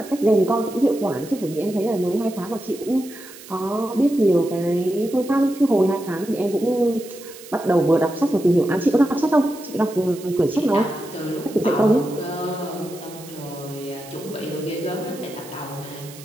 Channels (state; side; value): noise; right; hiss, 18 dB below the sound